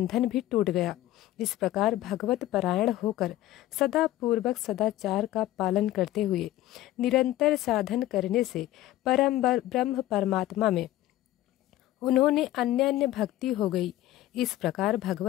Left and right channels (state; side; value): quieter; right; 14.9 dB